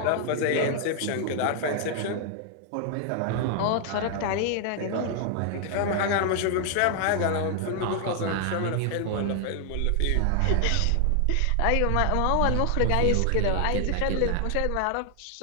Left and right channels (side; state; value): both; different; correlation 0.00